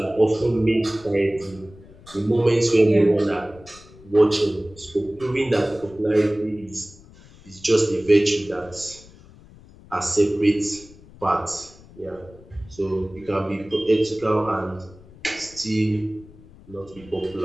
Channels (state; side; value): noise; left; rumble, 22 dB below the sound